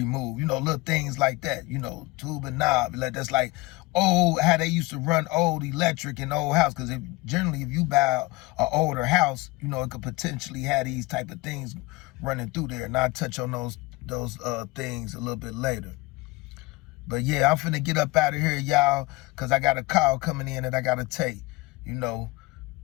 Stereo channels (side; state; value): right; quieter; 22.4 dB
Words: You know, little things like that. You know, tube and knob. That's like old, how they used to run old electric in old house. Because generally, if you buy an older house, you know, it could potentially have these type of things running through there. And I'll touch on those things a little bit later. But yeah, I'm finna get up out of here, y'all, because I got a call coming in that I got to take. You know,